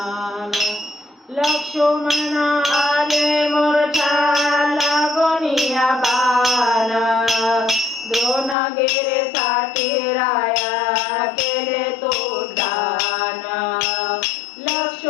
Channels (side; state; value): right; drops out; at 8.6 s